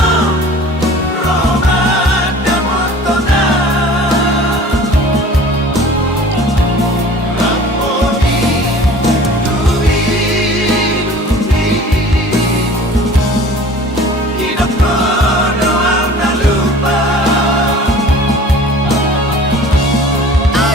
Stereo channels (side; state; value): both; normal; correlation 0.45